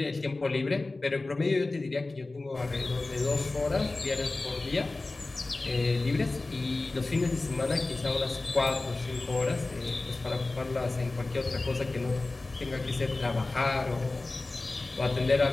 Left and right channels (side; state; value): right; quieter; 3.2 dB